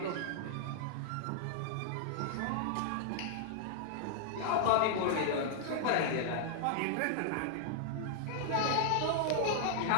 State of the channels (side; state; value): both; different; correlation -0.01